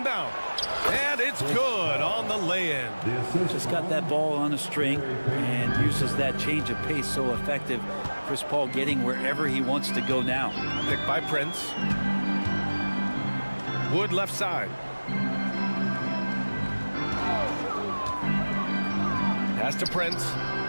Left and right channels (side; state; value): both; inverted; correlation -1.00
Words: And it's good on the lay-in. Just got that ball on a string and uses that change of pace so effective. Chris Paul getting wherever he wants to go now. Picked by Prince. Wood left side. Pass to Prince.